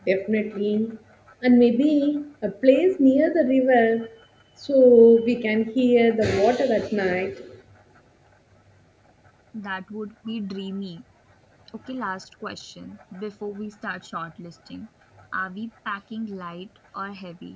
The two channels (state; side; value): identical; both; correlation 1.00